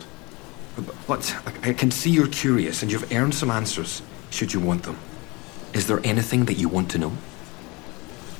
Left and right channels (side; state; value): right; quieter; 25.9 dB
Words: But I can see you're curious and you've earned some answers, should you want them. Is there anything that you want to know?